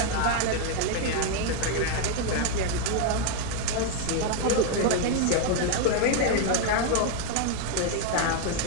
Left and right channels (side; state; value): both; different; correlation 0.00